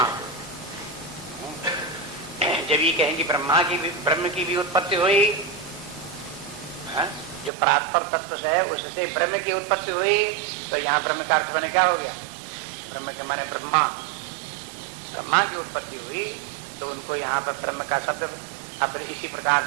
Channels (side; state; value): left; drops out; at 7.5 s